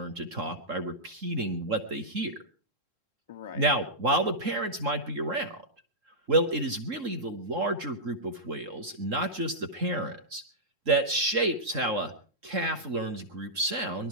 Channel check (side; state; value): left; late; 3.7 ms